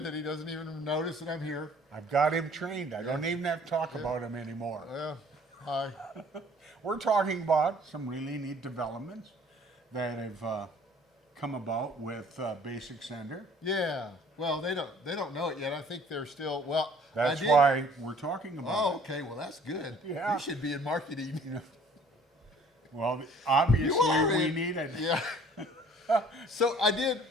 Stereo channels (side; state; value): both; normal; correlation 0.54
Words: that he doesn't even notice that I'm here. I've got him trained. I don't even have to talk about him anymore. Yeah, hi. We're talking about some really neat developments that have come about with BobsCNC. Yeah, well, they don't know it yet. I think they're still, That's why we're talking about Oh, it. okay, well, that's good. Yeah. You should be in marketing. Well, obviously You are we in- need it. Yeah. So